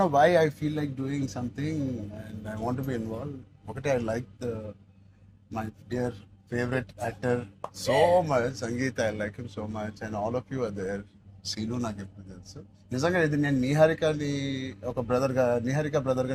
know why I feel like doing something and I want be involve. ఒకటి, I like my dear favourite actor so much, Sangeet. I like him so much and all of you are there. Seenu నాకు ఎప్పుడు తెలుసు. నిజంగా ఇది నేను నిహారికని ఒక బ్రదర్గా, నిహారిక బ్రదర్గా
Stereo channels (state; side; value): identical; both; correlation 1.00